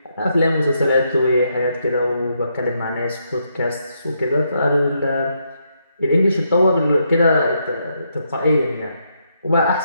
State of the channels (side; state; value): both; inverted; correlation -0.78